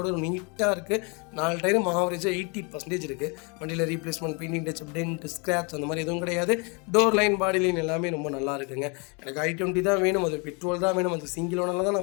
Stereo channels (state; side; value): quieter; right; 32.8 dB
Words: நீட்டாக இருக்குது. 4 டயரும் ஆவரேஜாக 80% இருக்குது. வண்டியில் replacement, painting, touch, dent, scratch அந்த மாதிரி எதுவும் கிடையாது. டோர் லைன், பாடி லைன் எல்லாமே ரொம்ப நல்லா இருக்குங்க. எனக்கு i20 தான் வேணும், அது பெட்ரோல் தான் வேணும், அது சிங்கிள் ஓனரில் தான்